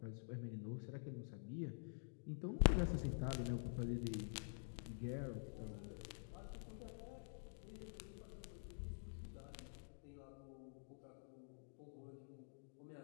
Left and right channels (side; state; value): right; silent; digital silence